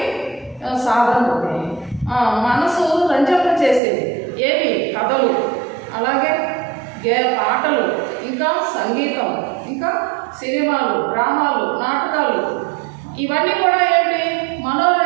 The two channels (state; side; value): drops out; left; at 3.8 s